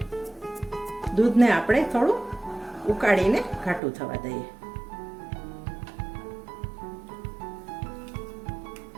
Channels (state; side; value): drops out; left; at 3.8 s